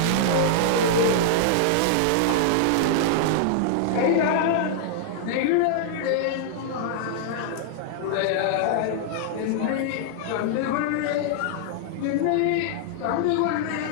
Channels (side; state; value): both; different; correlation -0.01